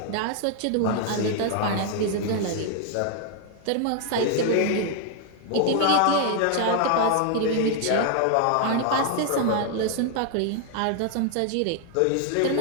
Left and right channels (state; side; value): different; both; correlation 0.00